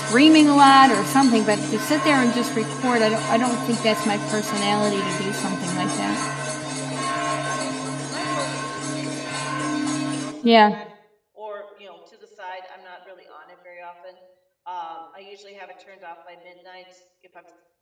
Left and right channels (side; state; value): both; identical; correlation 1.00